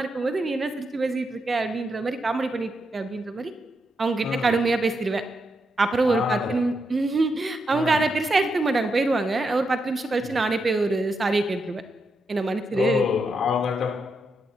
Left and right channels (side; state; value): both; normal; correlation 0.83